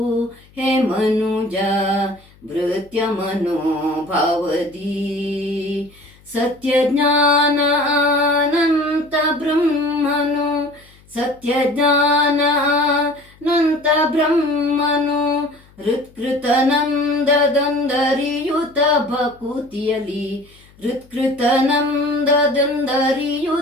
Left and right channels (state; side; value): noise; left; hum, 28 dB below the sound